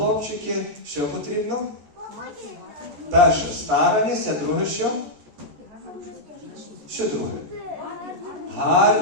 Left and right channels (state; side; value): late; left; 14 ms